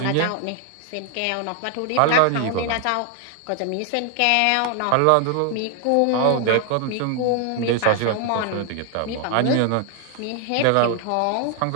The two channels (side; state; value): both; different; correlation 0.01